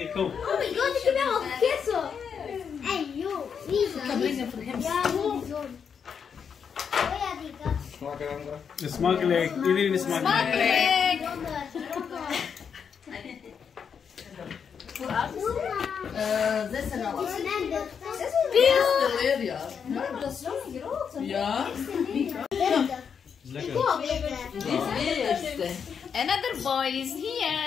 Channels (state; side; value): quieter; right; 6.9 dB